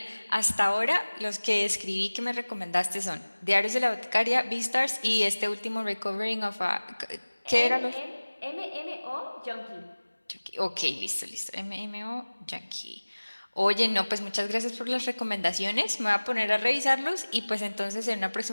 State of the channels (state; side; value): inverted; both; correlation -1.00